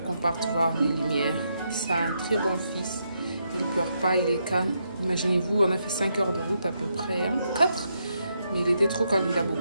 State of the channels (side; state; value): both; inverted; correlation -0.80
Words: qu'on parte voir les lumières. C'est un très bon fils. Il ne pleure pas, il est calme. Imaginez-vous, on a fait 5 heures de route à peu près, hein, 4. Mais il était trop calme, il a